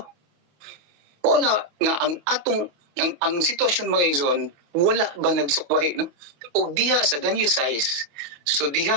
Wala nga ang atong ang sitwasyon mga igsoon, wala ba nagsukwahi, no? O diha sa Daniel 6, so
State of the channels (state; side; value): late; left; 28 ms